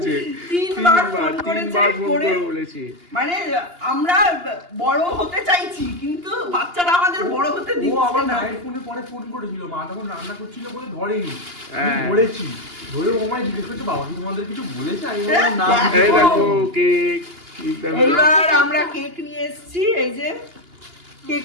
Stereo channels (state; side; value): late; left; 2.8 ms